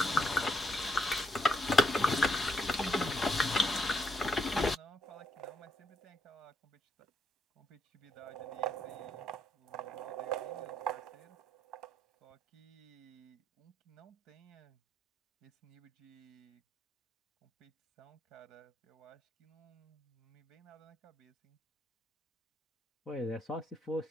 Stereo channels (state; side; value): normal; both; correlation 0.76